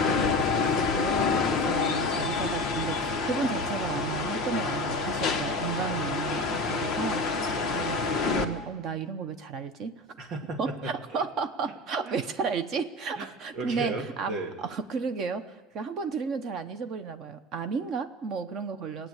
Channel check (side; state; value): both; normal; correlation 0.31